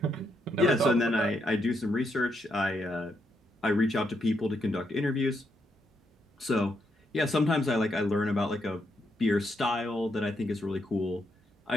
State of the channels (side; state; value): both; normal; correlation 0.78